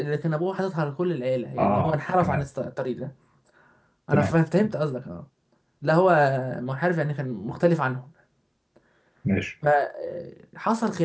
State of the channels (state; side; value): identical; both; correlation 1.00